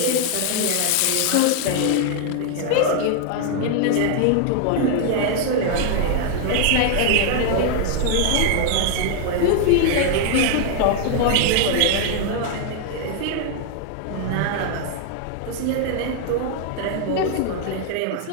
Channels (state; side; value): different; both; correlation 0.00